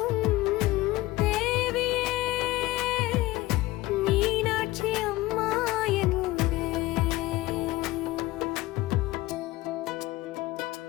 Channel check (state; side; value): quieter; right; 18.4 dB